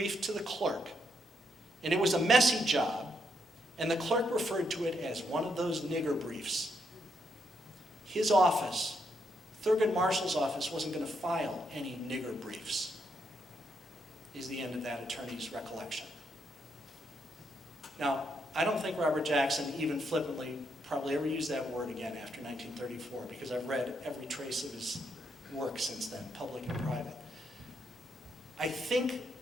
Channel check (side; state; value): both; normal; correlation 0.78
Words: to the clerk, and it was a messy job, and the clerk referred to it as one of those nigger briefs. His office, Thurgood Marshall's office, wasn't going to file any nigger briefs, is the end of that attorney's recollection. Now, I don't think Robert Jackson even flippantly probably ever used that word again after 1934, because I've read every trace of his work since then, public and private. I think